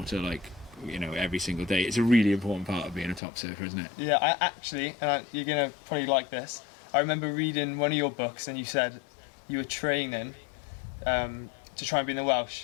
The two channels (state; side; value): drops out; right; at 3.2 s